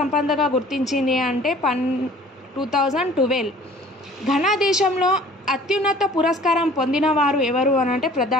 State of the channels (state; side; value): normal; both; correlation 0.50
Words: గుర్తించింది అంటే 2012. ఘనా దేశంలో అత్యున్నత పురస్కారం పొందిన వారు ఎవరు అని అంటే